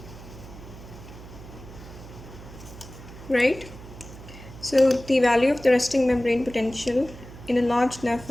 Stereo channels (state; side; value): noise; right; hum, 16 dB below the sound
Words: Right? So the value of the resting membrane potential in a large nerve